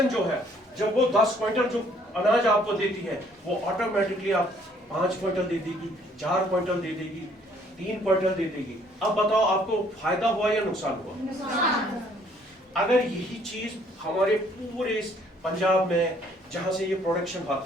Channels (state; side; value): normal; both; correlation 0.62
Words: जो है, जब वो 10 क्विंटल जो अनाज आपको देती है, वो ऑटोमेटिकली आप 5 क्विंटल दे देगी, 4 क्विंटल दे देगी, 3 क्विंटल दे देगी। अब बताओ, आपको फायदा हुआ या नुकसान हुआ? अगर यही चीज हमारे पूरे इस पंजाब में जहां से ये प्रोडक्शन